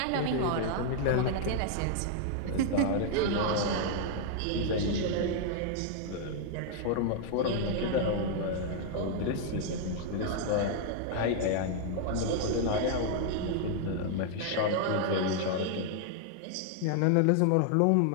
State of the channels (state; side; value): different; both; correlation 0.00